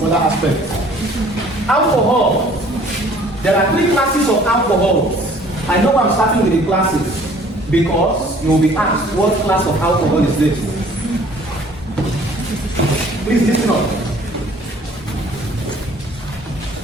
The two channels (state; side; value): normal; both; correlation 0.54